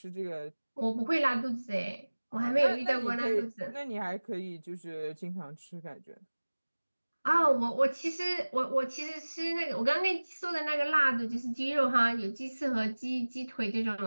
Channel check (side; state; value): both; inverted; correlation -1.00